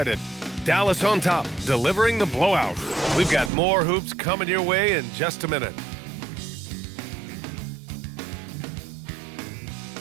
Dallas on top, delivering the blowout. We've got more hoops coming your way in just a minute.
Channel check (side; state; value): left; drops out; at 3.5 s